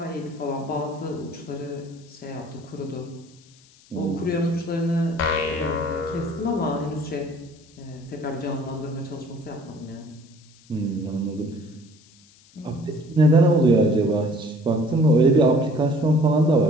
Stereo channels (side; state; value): left; noise; hiss, 28 dB below the sound